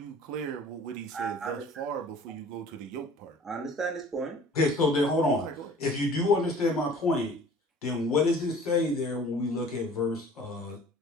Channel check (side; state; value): both; normal; correlation 0.48